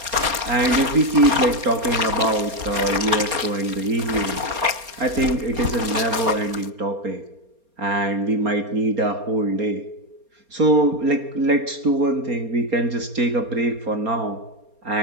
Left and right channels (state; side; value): late; left; 4.3 ms